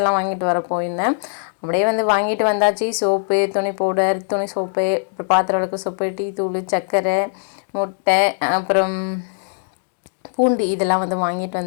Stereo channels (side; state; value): right; silent; digital silence